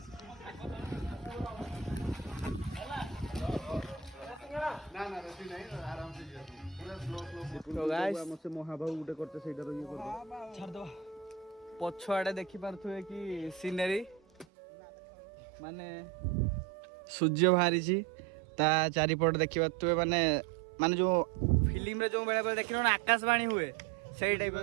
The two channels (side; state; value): left; drops out; at 14.5 s